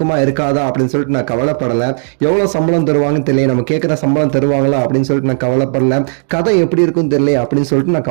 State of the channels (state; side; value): silent; left; digital silence